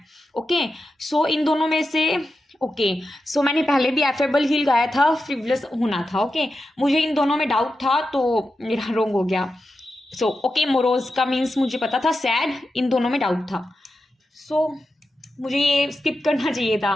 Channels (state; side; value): normal; both; correlation 0.90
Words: Okay, so इन दोनों में से ओके, सो मैंने पहले भी एफेबल ही लगाया था, फ्रिवलस होना था। ओके, मुझे इन दोनों में डाउट था तो मेरा रोंग हो गया। सो ओके, मोरोज का मीन्स मुझे पता था, सैड इन दोनों में डाउट था। सो मुझे ये स्किप करना चाहिए था।